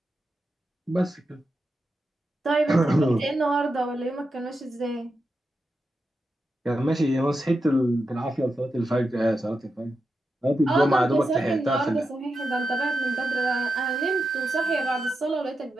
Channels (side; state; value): both; normal; correlation 0.88